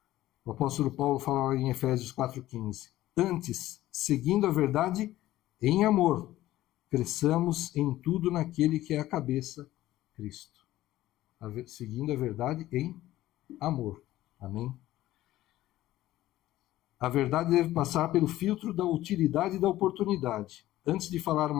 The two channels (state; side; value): quieter; right; 15.2 dB